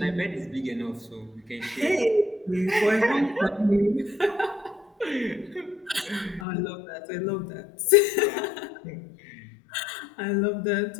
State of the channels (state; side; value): drops out; right; at 6.5 s